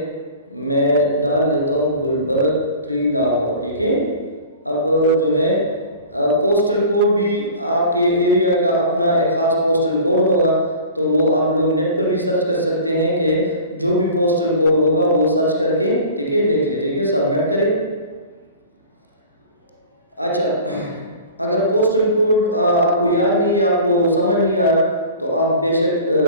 मैं डाल देता हूँ गुलबर्ग 3 लाहौर। ठीक है, अब जो है पोस्टल कोड भी आपके एरिया का अपना एक ख़ास पोस्टल कोड होगा, तो वो आप लोग नेट पर भी सर्च कर सकते हैं कि जो भी पोस्टल कोड होगा वो सर्च करके ठीक है लिख ले। ठीक है, सबमिट करें। अच्छा, अगर पोस्टल कोड आपको याद नहीं है, आपको समझ नहीं आ रहा, तो आप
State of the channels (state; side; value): inverted; both; correlation -0.42